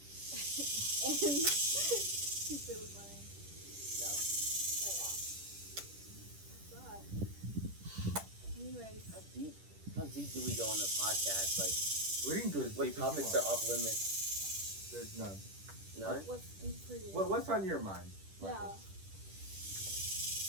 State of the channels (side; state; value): left; late; 10 ms